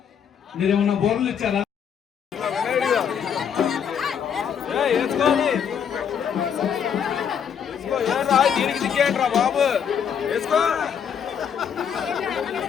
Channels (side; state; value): right; quieter; 7.8 dB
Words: మీరేమన్నా బోర్లు ఇచ్చారా? దీనికి దిగ్గేంట్రా బాబు వేసుకో